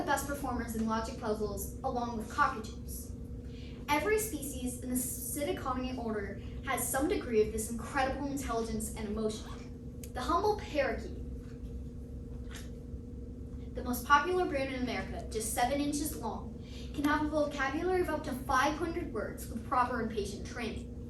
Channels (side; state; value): both; identical; correlation 1.00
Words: best performers in logic puzzles along with cockatoos. Every species in the Psittaconia order has some degree of this incredible intelligence and emotion. The humble parakeet, the most popular bird in America, just 7 inches long, can have a vocabulary of up to 500 words with proper and patient training.